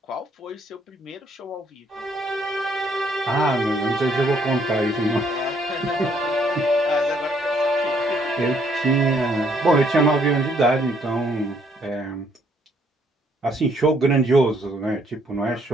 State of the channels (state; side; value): normal; both; correlation 0.68